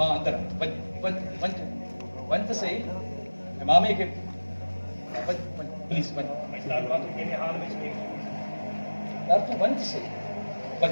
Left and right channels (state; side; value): inverted; both; correlation -1.00